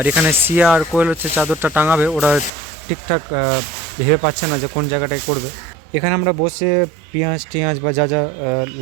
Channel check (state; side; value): drops out; left; at 2.5 s